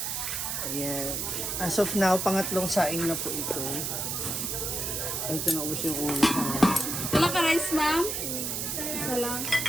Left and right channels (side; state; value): right; noise; hiss, 2 dB below the sound